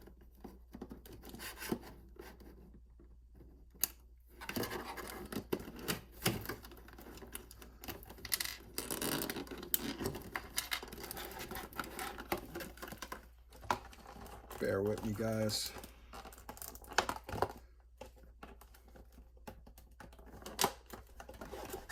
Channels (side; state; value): both; identical; correlation 1.00